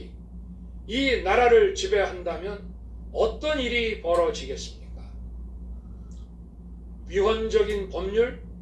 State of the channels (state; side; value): identical; both; correlation 1.00